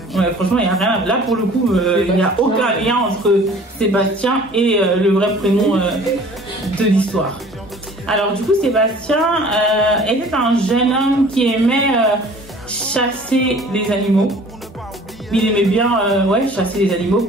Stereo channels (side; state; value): both; normal; correlation 0.49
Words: Ouais, franchement, il n'y a rien. Là, pour le coup, il n'y a aucun lien entre Sébastien et le vrai prénom de l'histoire. Alors, du coup, Sébastien était un jeune homme qui aimait chasser les animaux. Il aimait bien chasser les animaux